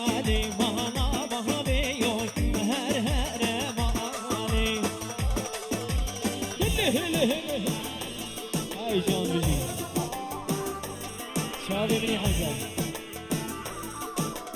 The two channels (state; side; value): identical; both; correlation 1.00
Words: مانا وهبيو هر هر مال هاي جان بجي شادي بني حمزة